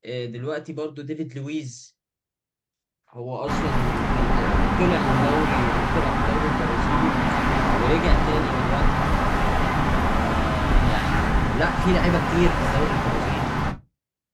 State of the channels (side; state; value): both; identical; correlation 1.00